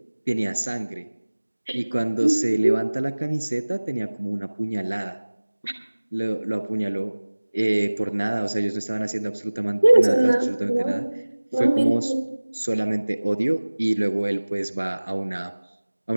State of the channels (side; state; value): both; inverted; correlation -1.00